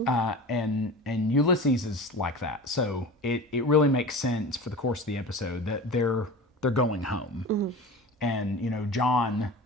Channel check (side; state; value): both; normal; correlation 0.34